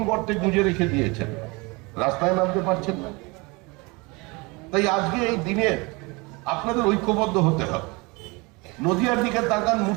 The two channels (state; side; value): quieter; left; 26.5 dB